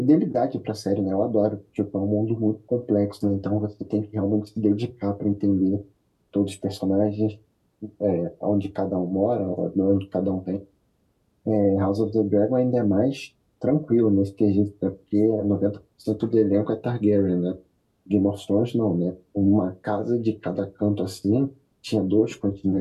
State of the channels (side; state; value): both; identical; correlation 1.00